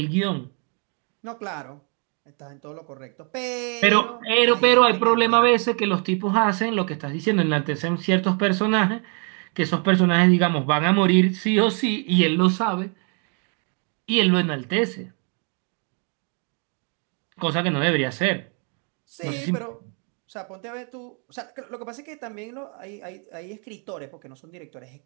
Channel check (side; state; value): left; quieter; 39.3 dB